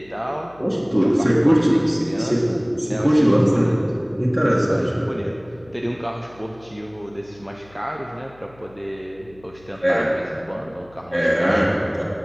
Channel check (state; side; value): noise; left; hum, 26 dB below the sound